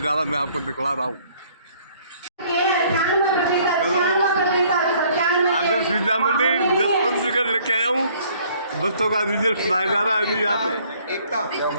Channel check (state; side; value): inverted; both; correlation -0.60